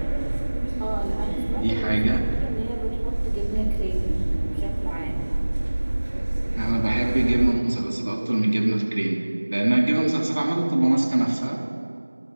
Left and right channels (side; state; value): both; inverted; correlation -1.00